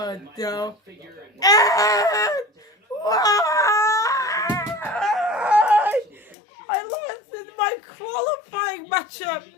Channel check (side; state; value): right; drops out; at 6.4 s